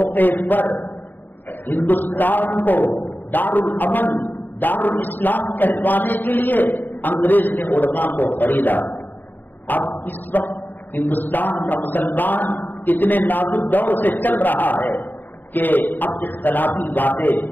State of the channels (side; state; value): right; late; 0.090 ms